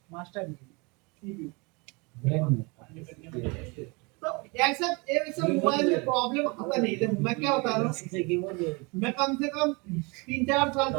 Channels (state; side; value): quieter; left; 28.5 dB